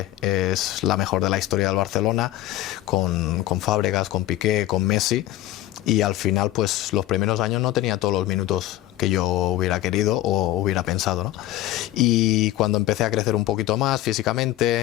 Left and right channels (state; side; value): quieter; right; 14.7 dB